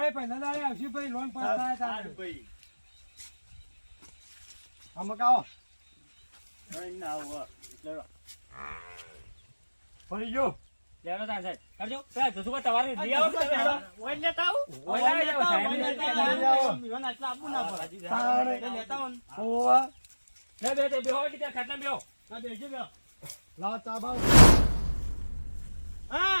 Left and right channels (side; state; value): both; inverted; correlation -1.00